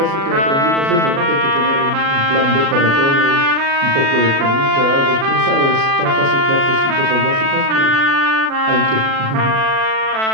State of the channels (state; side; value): late; left; 36 ms